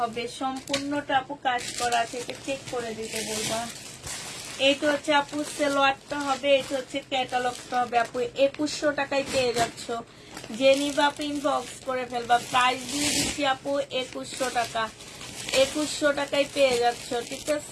হবে, সম্পূর্ণটা আপু কাজ করা আছে, এটা চেক করে দিতে বলবা। এইটা হচ্ছে আপু সেলোয়ারটা হবে, এটা হচ্ছে ক্যাটালগটা হবে আপু। 2100 টাকায় পেয়ে যাচ্ছ, যে নিবা আপু ইনবক্স করে ফেলবা। প্রাইস দিয়ে দিচ্ছি আপু 2100 টাকা। 2100 টাকায় পেয়ে যাচ্ছ, ঠিক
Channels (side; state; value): both; identical; correlation 1.00